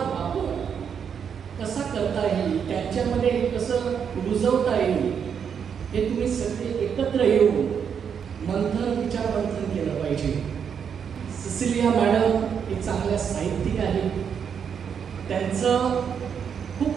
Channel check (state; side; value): quieter; left; 7.3 dB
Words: वापर कसा करता येईल, त्यांच्यामध्ये कसं रुजवता येईल हे तुम्ही सगळे एकत्र येऊन विचार मंथन केलं पाहिजे. सिसिलिया मॅडम एक चांगल्या साहित्यिक आहेत, त्यांचं